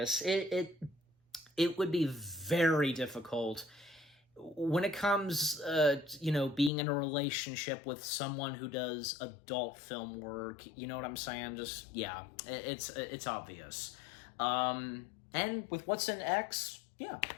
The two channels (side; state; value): right; drops out; at 6.7 s